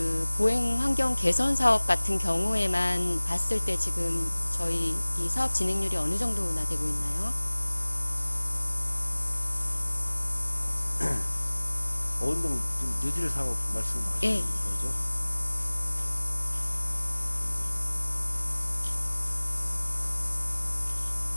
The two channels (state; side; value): inverted; both; correlation -1.00